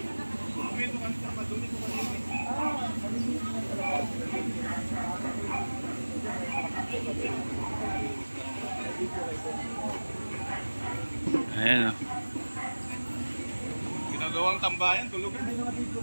Ayan o. Ginagawang tambayan, tulugan.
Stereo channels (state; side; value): inverted; both; correlation -1.00